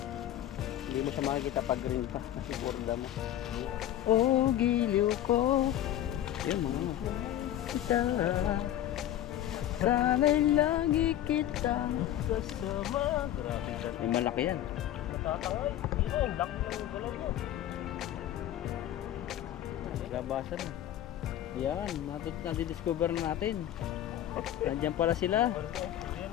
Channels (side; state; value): right; quieter; 12.1 dB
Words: Hindi mo siya makikita pag green pa. Kasi borda mo. Oh, giliw ko. Ayun mga. Kita. Sana'y lagi kita kasama. Grabe ka. May malaki yan. Matatangay. Dito, ang laki ng galaw mo. Labasan na. Yan, nadidiscover na natin. Nandiyan pala sila. Ayan